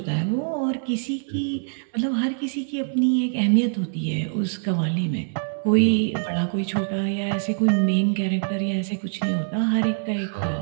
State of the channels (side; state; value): left; silent; 63 dB below the other